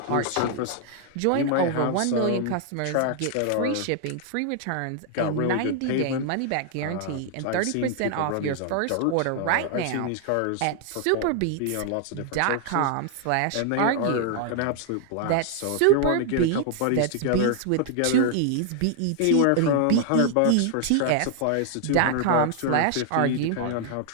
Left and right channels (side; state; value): both; different; correlation 0.00